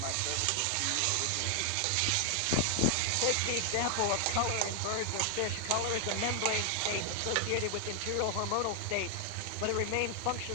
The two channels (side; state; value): both; different; correlation 0.00